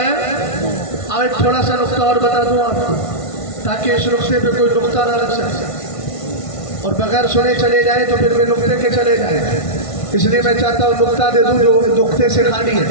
آج تھوڑا سا نقطہ اور بتا دوں آپ کو تاکہ اس نقطے پہ کوئی نقطہ نہ رکھ سکے اور بغیر سنے چلے جائیں تو پھر میں نقطے کے چلے جائیں. اس لیے میں چاہتا ہوں نقطہ دے دوں جو نقطے سے خالی ہے.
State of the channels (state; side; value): late; right; 1.5 ms